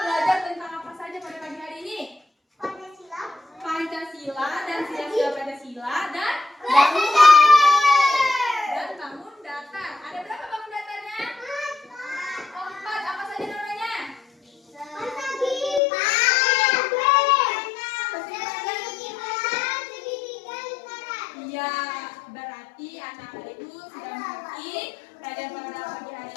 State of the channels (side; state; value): right; drops out; at 15.8 s